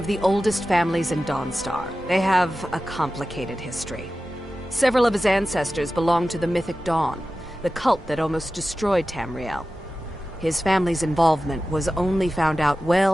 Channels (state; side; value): normal; both; correlation 0.94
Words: the oldest families in Dawnstar. They have a complicated history. Several of his ancestors belonged to the Mythic Dawn, the cult that almost destroyed Tamriel. His family's involvement was only found out